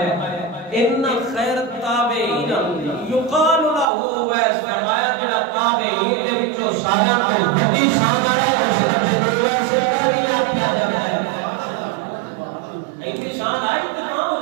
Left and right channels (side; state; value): left; drops out; at 3.9 s